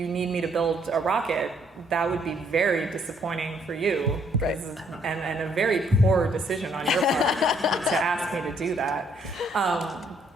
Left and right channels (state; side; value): normal; both; correlation 0.68